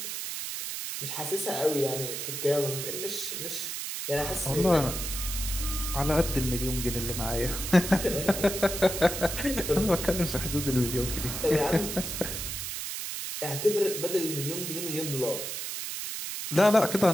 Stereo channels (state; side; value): noise; right; hiss, 5 dB below the sound